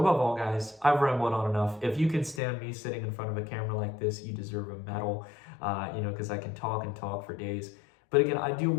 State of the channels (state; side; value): drops out; right; at 2.4 s